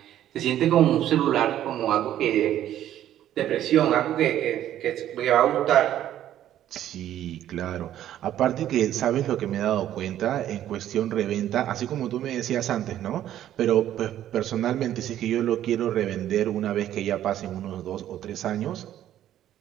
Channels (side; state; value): left; quieter; 11.9 dB